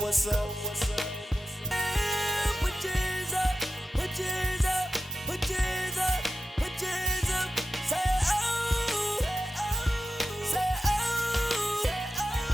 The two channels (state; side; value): normal; both; correlation 0.90